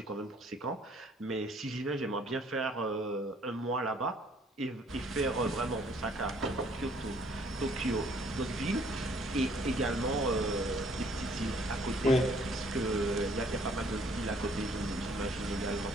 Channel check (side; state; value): both; normal; correlation 0.62